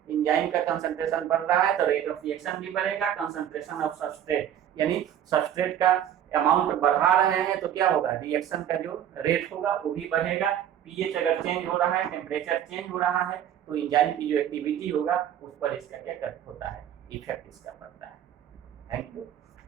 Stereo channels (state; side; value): quieter; left; 10.3 dB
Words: एंजाइम का कंसंट्रेशन बढ़ रहा है तो रेट ऑफ रिएक्शन भी बढ़ेगा। कंसंट्रेशन ऑफ सबस्ट्रेट, यानी सबस्ट्रेट का अमाउंट बढ़ा रहे हैं तो क्या होगा, रिएक्शन का जो रेट होगा वो भी बढ़ेगा। पीएच अगर चेंज हो रहा है, टेम्परेचर चेंज हो रहा है, तो एंजाइम की जो एक्टिविटी होगा उस पर इसका क्या होता है, इफेक्ट इसका पड़ता है। Thank you